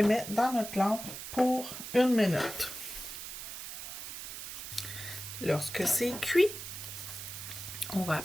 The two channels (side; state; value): right; noise; hiss, 9 dB below the sound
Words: met dans notre lampe pour 1 minute. Lorsque c'est cuit, on va